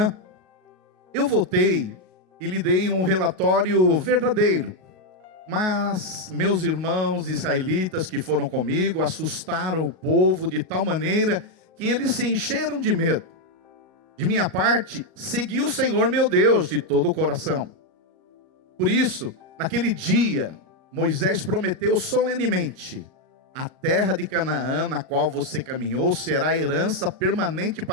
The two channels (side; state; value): left; late; 38 ms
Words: Eu voltei e lhe dei um relatório verdadeiro, mas meus irmãos israelitas que foram comigo assustaram o povo de tal maneira que eles se encheram de medo. De minha parte, segui o Senhor meu Deus de todo o coração. Por isso, naquele dia, Moisés prometeu solenemente: a terra de Canaã, na qual você caminhou, será herança permanente